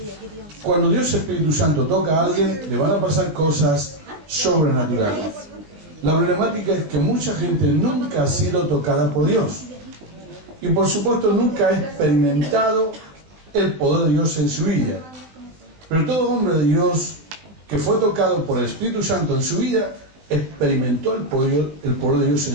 Cuando Dios Espíritu Santo toca a alguien, le van a pasar cosas sobrenaturales. La problemática es que mucha gente nunca ha sido tocada por Dios. Y por supuesto nunca ha experimentado el poder de Dios en su vida. Pero todo hombre de Dios que fue tocado por el Espíritu Santo en su vida, experimentó el poder de Dios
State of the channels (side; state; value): left; late; 19 ms